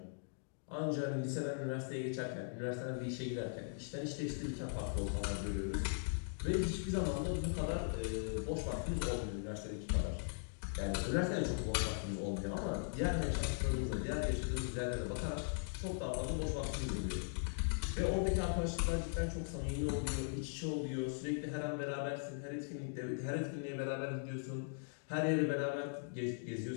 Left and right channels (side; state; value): right; silent; digital silence